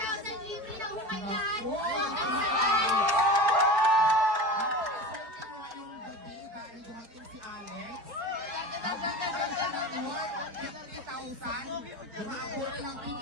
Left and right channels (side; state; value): left; late; 4.5 ms